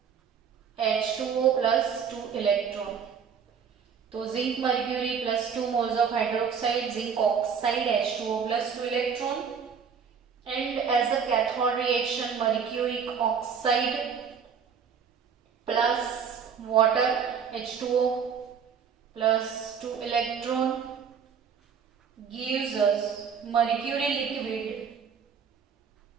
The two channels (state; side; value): quieter; left; 6.8 dB